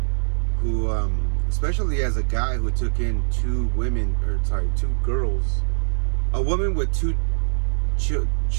who, especially as a guy who took in two girls, a woman with two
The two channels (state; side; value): silent; left; digital silence